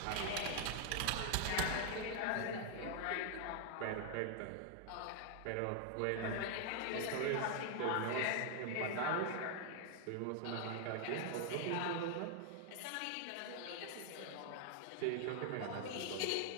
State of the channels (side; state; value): both; different; correlation 0.00